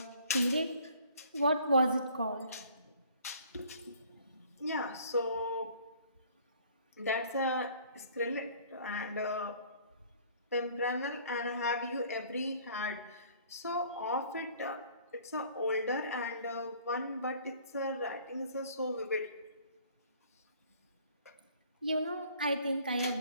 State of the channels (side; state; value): both; inverted; correlation -0.55